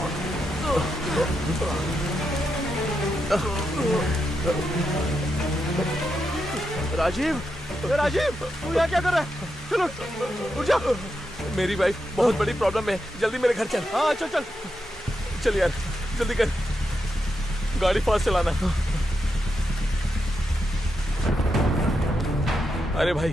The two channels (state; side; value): normal; both; correlation 0.85